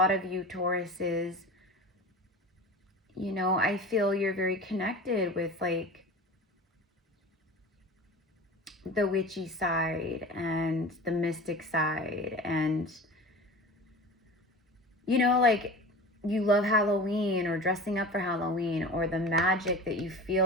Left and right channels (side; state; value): both; normal; correlation 0.34